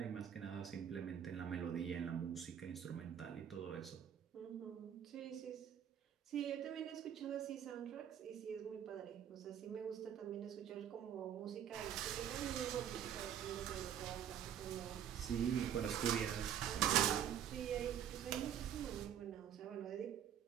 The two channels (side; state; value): left; quieter; 9.4 dB